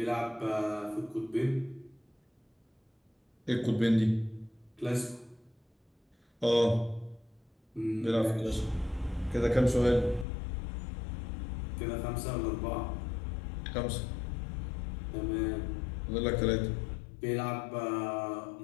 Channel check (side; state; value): right; drops out; at 10.2 s